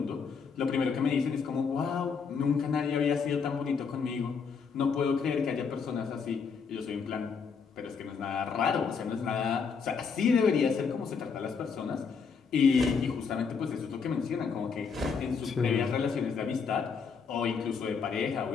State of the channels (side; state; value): right; quieter; 5.7 dB